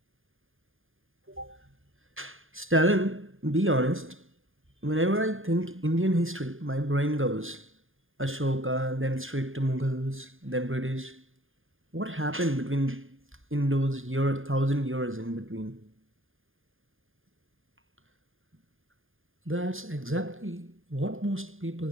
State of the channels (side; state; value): left; late; 0.59 ms